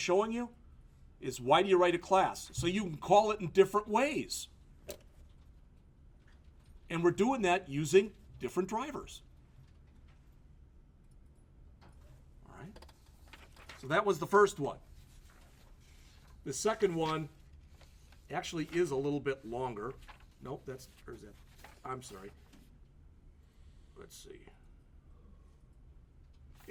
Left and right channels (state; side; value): identical; both; correlation 1.00